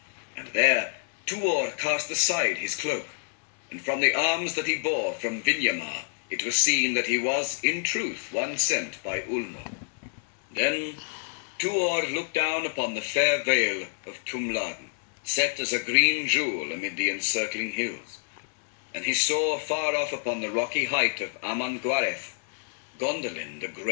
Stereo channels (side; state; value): right; silent; 60 dB below the other